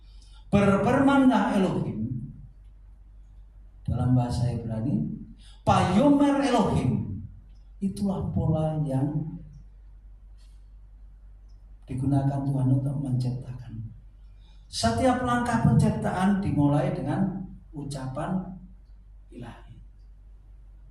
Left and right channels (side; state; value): both; identical; correlation 1.00